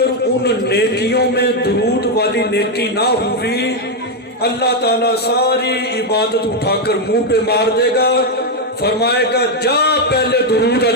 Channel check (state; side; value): normal; both; correlation 0.03